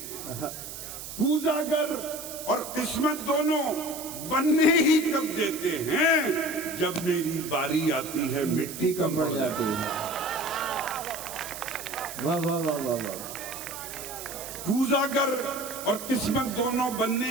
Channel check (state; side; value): noise; right; hiss, 10 dB below the sound